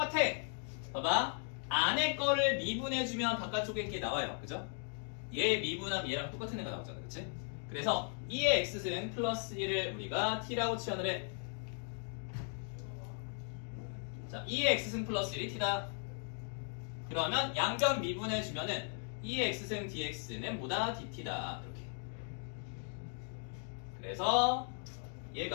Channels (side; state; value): right; silent; 53 dB below the other